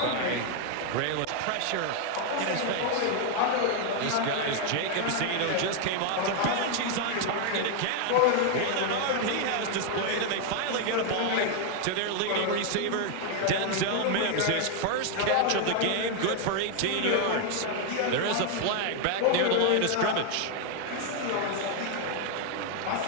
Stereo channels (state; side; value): different; both; correlation 0.00